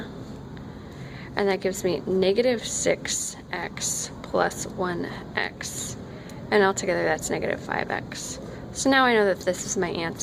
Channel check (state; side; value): identical; both; correlation 1.00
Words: and that gives me -6x plus 1x. And altogether that's -5x. So now I know that this is my